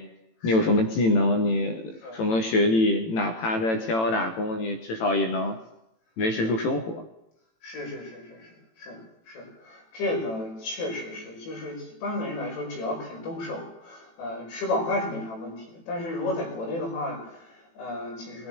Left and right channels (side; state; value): right; late; 18 ms